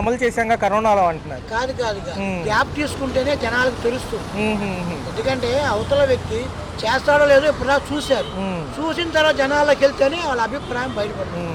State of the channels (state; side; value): identical; both; correlation 1.00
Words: అమలు చేశాక కరోనాలో అంటున్నారు. కాదు గ్యాప్ తీసుకుంటేనే జనాలకు తెలుస్తుంది. ఎందుకంటే అవతల వ్యక్తి చేస్తాడో లేదో ఇప్పుడు చూశారు, చూసిన తర్వాత జనాల్లోకి వెళ్తేనే వాళ్ళ అభిప్రాయం బయటపడుతుంది.